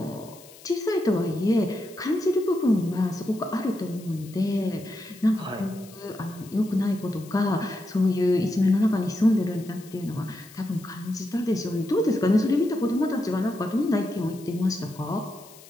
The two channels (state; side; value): noise; left; hiss, 21 dB below the sound